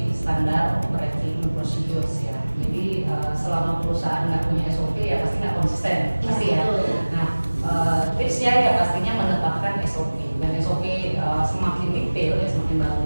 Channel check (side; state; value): both; inverted; correlation -1.00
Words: standar operating procedures ya. Jadi selama perusahaan nggak punya SOP ya pasti nggak konsisten, pasti ya. Nah, tipsnya ya pastinya menetapkan SOP, dan SOP semakin detail ya semakin